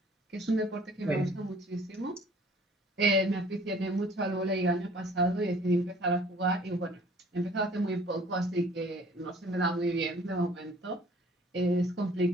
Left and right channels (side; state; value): both; normal; correlation 0.53